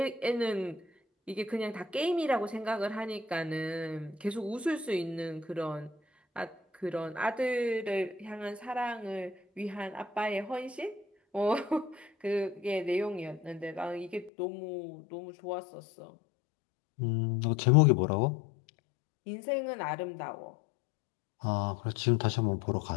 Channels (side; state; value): right; drops out; at 14.3 s